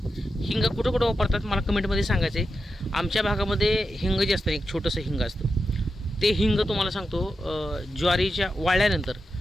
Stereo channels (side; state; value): both; normal; correlation 0.88